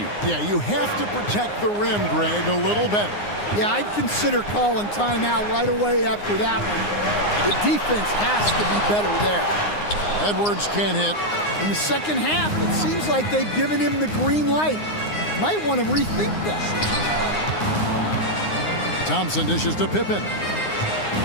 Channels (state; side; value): late; right; 9.7 ms